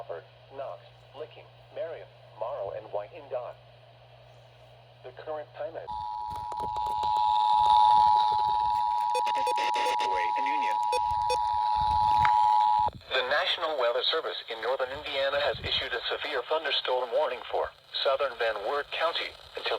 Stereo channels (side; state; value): both; identical; correlation 1.00